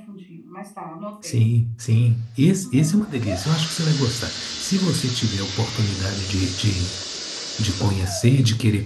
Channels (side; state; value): both; identical; correlation 1.00